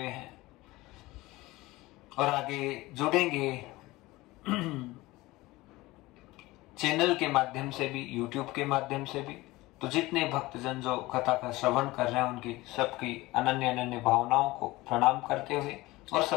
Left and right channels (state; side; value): quieter; right; 19.8 dB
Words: हैं और आगे जुड़ेंगे चैनल के माध्यम से भी, यूट्यूब के माध्यम से भी, तो जितने भक्तजन जो कथा का श्रवण कर रहे हैं उनकी सबकी अनन्य भावनाओं को प्रणाम करते हुए, और